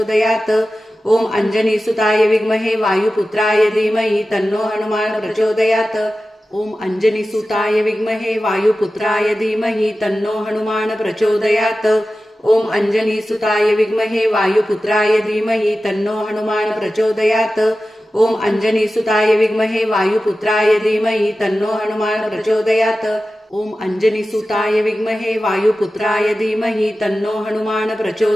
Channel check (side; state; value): both; normal; correlation 0.94